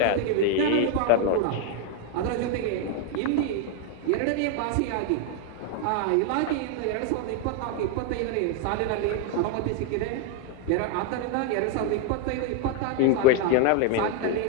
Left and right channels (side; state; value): both; different; correlation 0.01